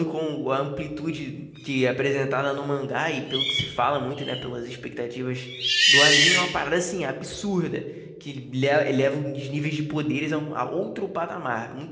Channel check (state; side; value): identical; both; correlation 1.00